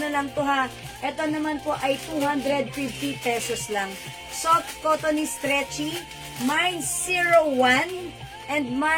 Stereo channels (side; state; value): both; identical; correlation 1.00